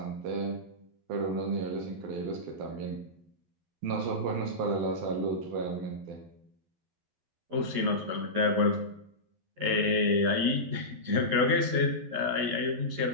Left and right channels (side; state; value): left; late; 11 ms